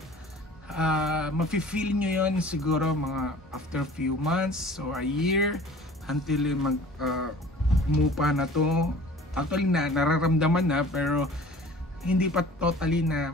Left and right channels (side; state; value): both; normal; correlation 0.46